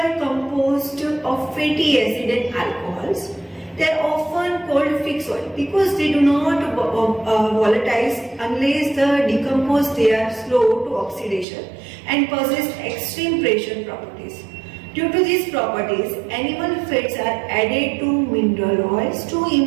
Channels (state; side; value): drops out; left; at 11.5 s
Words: composed of fatty acid and alcohols. They are often called fixed oil because they do not volatilize unless the decompose. They are slow to oxidation and possess extreme pressure properties. Due to these properties, animal fats are added to mineral oils to